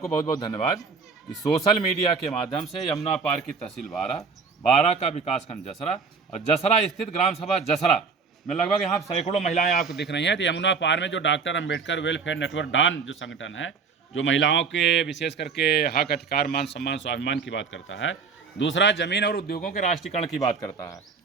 बहुत बहुत धन्यवाद कि सोशल मीडिया के माध्यम से यमुना पार की तहसील बारा का विकासखंड जसरा और जसरा स्थित ग्राम सभा जसरा में लगभग यहाँ सैकड़ों महिलाएं आपको दिख रही हैं। तो यमुना पार में जो डॉक्टर अंबेडकर वेलफेयर नेटवर्क डान जो संगठन है, जो महिलाओं के विशेष करके हक, अधिकार, मान सम्मान, स्वाभिमान की बात करता है। दूसरा, जमीन और उद्योगों के राष्ट्रीयकरण की बात करता है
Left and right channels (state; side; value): quieter; left; 5.2 dB